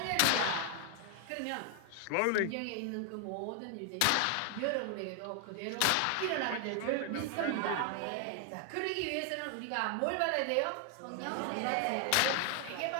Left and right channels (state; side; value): different; both; correlation 0.00